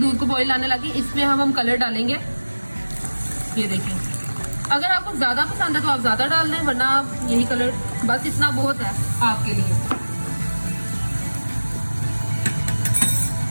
को बॉईल आने लगी, इसमें हम कलर डालेंगे। ये देखिए, अगर आपको ज्यादा पसंद है तो आप ज्यादा डाल दें, वरना आप यही कलर, बस इतना बहुत है आपके लिए।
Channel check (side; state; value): both; inverted; correlation -1.00